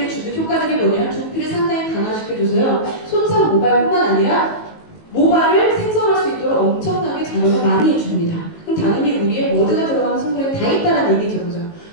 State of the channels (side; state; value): right; late; 19 ms